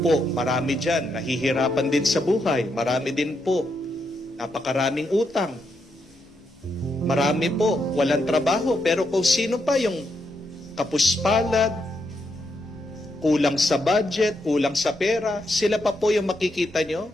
po, marami dyan, nahihirapan din sa buhay. Marami din po, napakaraming utang. Marami po, walang trabaho. Pero kung sino pa yung kapuspalad, kulang sa budget, kulang sa pera, sila pa po yung makikita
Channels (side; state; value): both; normal; correlation 0.80